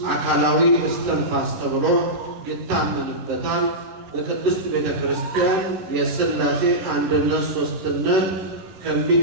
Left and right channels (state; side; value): late; left; 10 ms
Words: አካላዊ እስትንፋስ ተብሎ ይታመንበታል። በቅድስት ቤተ ክርስቲያን የሥላሴ አንድነት ሦስትነት